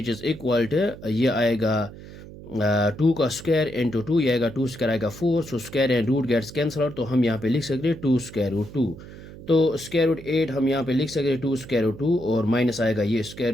इज़ इक्वल टू, ये आएगा 2 का स्क्वायर इंटू 2, ये आएगा 2 स्क्वायर आएगा 4, so square and root gets cancel out, तो हम यहाँ पे लिख सकते हैं 2 स्क्वायर रूट 2। तो स्क्वायर रूट 8 हम यहाँ पे लिख सकते हैं 2 स्क्वायर रूट 2, और माइनस आएगा ये square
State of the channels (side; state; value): right; noise; hum, 16 dB below the sound